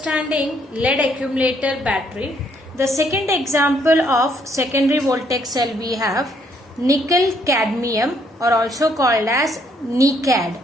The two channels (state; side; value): normal; both; correlation 0.69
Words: lead accumulator battery, the second example of secondary voltaic cell we have nickel cadmium, or also called as